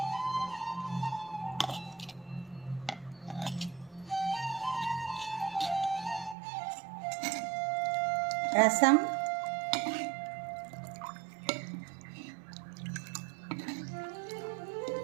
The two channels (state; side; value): drops out; left; at 6.4 s